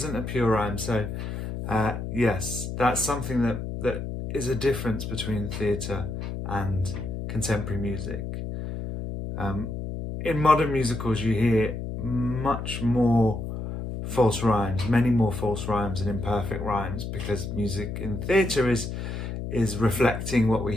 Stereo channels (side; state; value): left; noise; hum, 5 dB below the sound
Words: a pure rhyme. So yes, that's something that is a difference between theatre and contemporary music. In modern musicals, you hear much more false rhymes, many more false rhymes and imperfect rhymes, because music in theatre is reflecting what we